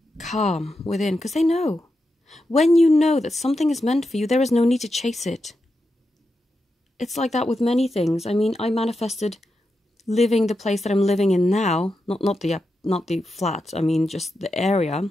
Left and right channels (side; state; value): both; normal; correlation 0.88